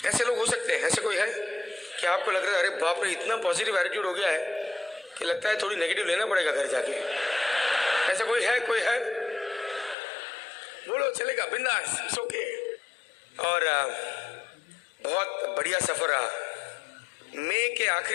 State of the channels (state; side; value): drops out; right; at 10.0 s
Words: ऐसे लोग हो सकते हैं, ऐसे कोई है कि आपको लग रहा है अरे बाप रे इतना पॉजिटिव एटीट्यूड हो गया है कि लगता है थोड़ी नेगेटिव लेना पड़ेगा घर जाके? ऐसा कोई है? कोई है? बोलो, चलेगा, बिंदास, इट्स ओके। और बहुत बढ़िया सफ़र रहा। मई के